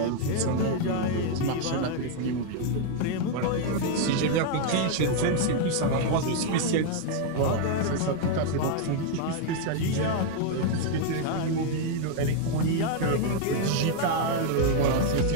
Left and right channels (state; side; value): different; both; correlation 0.00